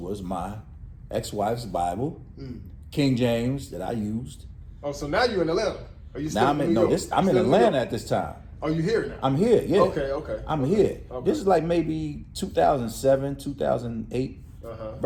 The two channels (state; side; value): identical; both; correlation 1.00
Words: my ex-wife's Bible, King James that I used. Oh, so now you're in Atlanta. Are you still I'm in Atlanta at this time. Oh, you here now? I'm here, yeah. Okay. I'm here. Okay. This is like maybe 2007, 2008,